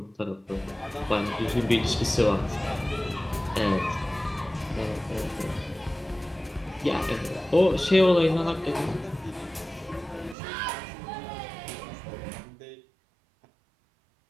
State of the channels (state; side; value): drops out; left; at 10.4 s